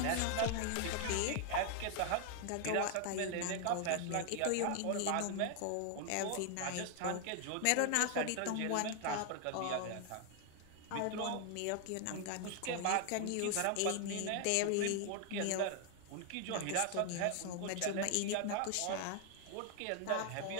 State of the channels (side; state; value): both; different; correlation 0.00